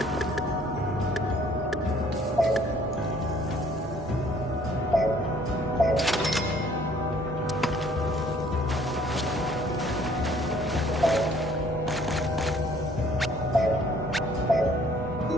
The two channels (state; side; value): normal; both; correlation 0.59